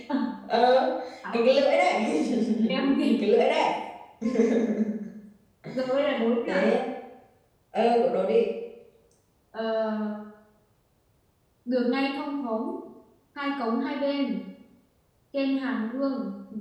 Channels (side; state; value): both; identical; correlation 1.00